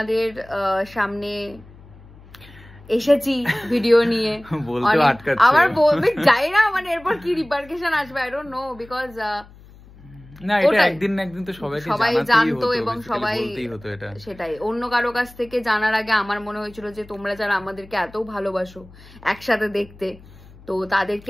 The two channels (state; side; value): noise; left; hum, 22 dB below the sound